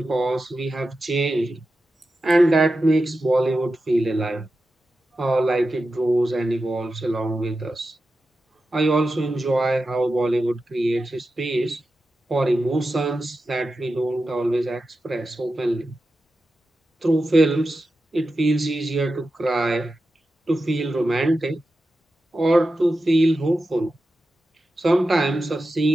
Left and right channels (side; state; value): both; normal; correlation 0.92